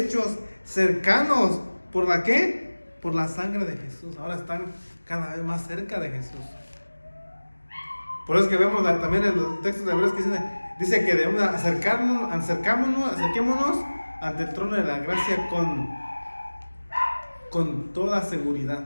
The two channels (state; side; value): inverted; both; correlation -1.00